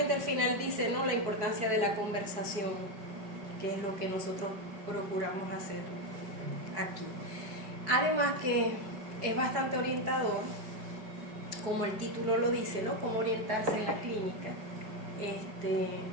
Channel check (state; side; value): late; left; 4.7 ms